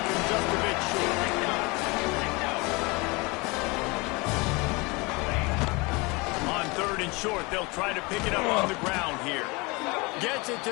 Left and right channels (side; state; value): right; quieter; 26.4 dB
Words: him just a bit short. On third and short, they'll try to pick it up on the ground here. Gets it